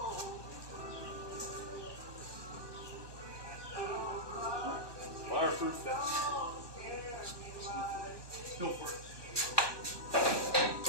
Fireproof vest. Go for it.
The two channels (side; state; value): left; late; 1.2 ms